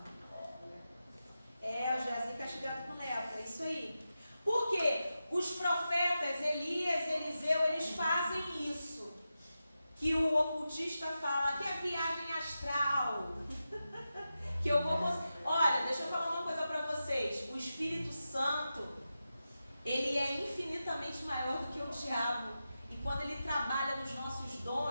O Geazi castigado com lepra, é isso aí. Porque os profetas Elias, Eliseu, eles fazem isso. Que o ocultista fala que é viagem astral. Que eu vou... Olha, deixa eu falar uma coisa para vocês. O Espírito Santo, ele é infinitamente maior do que o diabo. E quando ele trabalha nos nossos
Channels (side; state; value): both; inverted; correlation -0.91